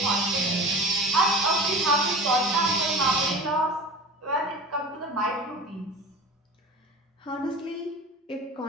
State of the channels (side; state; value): both; normal; correlation 0.36